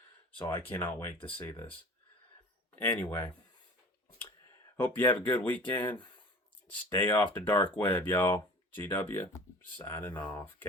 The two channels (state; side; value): normal; both; correlation 0.42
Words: So I cannot wait to see this. Anyway, hope you have a good weekend. Stay off the dark web, y'all. GW, signing off.